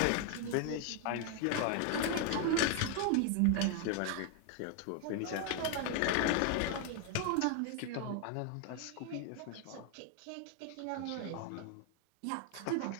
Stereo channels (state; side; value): different; both; correlation 0.01